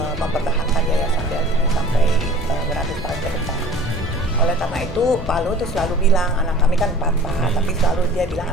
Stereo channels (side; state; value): both; normal; correlation 0.45